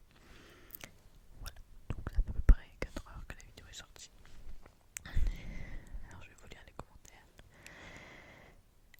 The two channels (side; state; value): both; identical; correlation 1.00